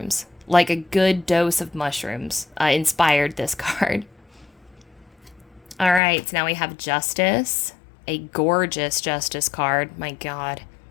Like a good dose of mushrooms inspired this card. All right, so now we have Justice, a gorgeous Justice card. My God.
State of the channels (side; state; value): right; drops out; at 6.0 s